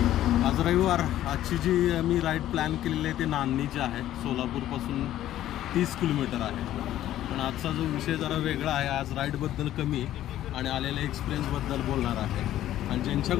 आज रविवार. आजची जी मी राईड प्लॅन केलेली आहे ते नान्नीची आहे. सोलापूरपासून 30 किलोमीटर आहे. पण आजचा जो विषय जरा वेगळा आहे. आज राईडबद्दल कमी आणि आलेल्या एक्सपिरियन्सबद्दल बोलणार आहे. आणि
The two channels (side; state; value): right; quieter; 13.0 dB